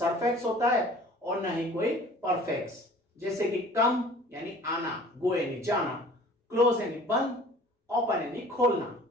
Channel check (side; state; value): both; normal; correlation 0.48